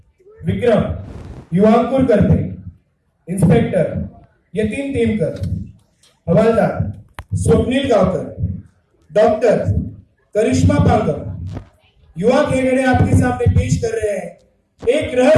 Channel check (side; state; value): both; identical; correlation 1.00